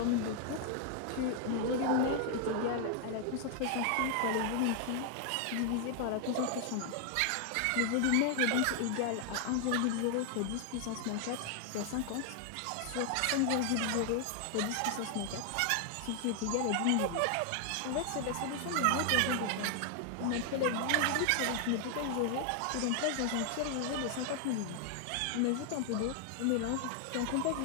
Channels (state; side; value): different; both; correlation 0.00